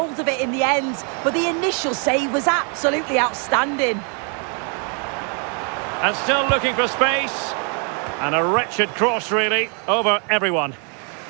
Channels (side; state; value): left; quieter; 39.1 dB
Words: of it in the end, but the initial save was absolutely outstanding. And still looking for space. And a wretched cross, really, over everyone.